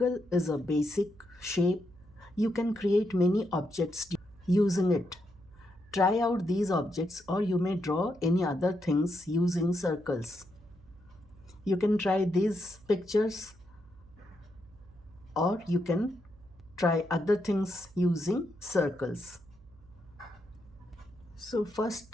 is a basic shape. You can create many objects using it. Try out these objects or you may draw any other things using circles. You can try these pictures or you can try other things using circles. So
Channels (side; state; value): right; noise; hum, 25 dB below the sound